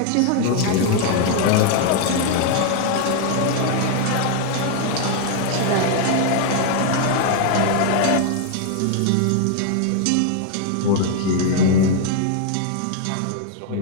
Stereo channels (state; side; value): different; both; correlation 0.00